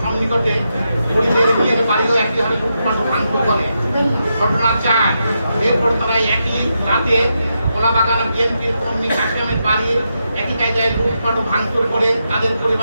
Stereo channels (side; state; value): both; inverted; correlation -0.84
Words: সন্নিকটে ঘুরিদের বিয়ের বাড়িও একই হারে লুটপাট ভাঙচুর করে। ঘটনা 4, এরপর তারা একই রাতে কলাবাগান বিএনপির কর্মী কাশিমের বাড়ি একই কায়দায় লুটপাট ও ভাঙচুর করে তাদের